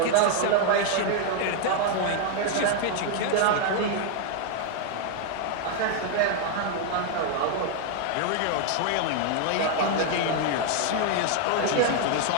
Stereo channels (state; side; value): different; both; correlation 0.00